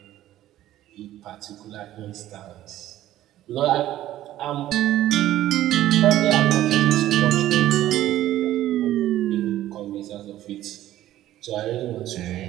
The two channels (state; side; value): quieter; left; 13.8 dB